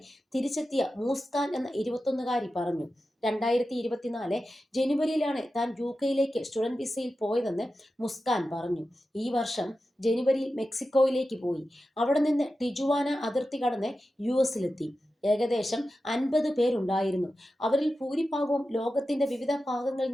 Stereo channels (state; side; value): normal; both; correlation 0.92